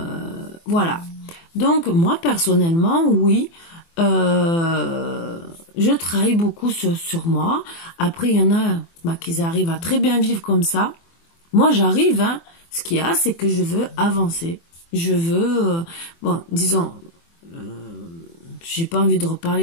Donc, moi, personnellement, oui, je travaille beaucoup sur moi. Après, il y en a qui arrivent à très bien vivre comme ça. Moi, j'arrive, hein. Ce qu'il y a, c'est que je veux avancer. Je veux, bon, disons, j'ai pas envie de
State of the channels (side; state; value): right; late; 24 ms